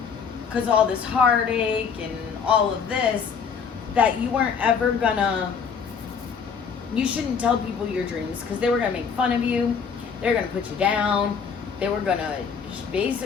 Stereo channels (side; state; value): right; quieter; 6.3 dB